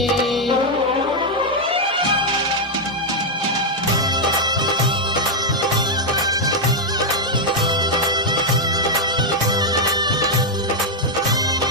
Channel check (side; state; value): both; normal; correlation -0.02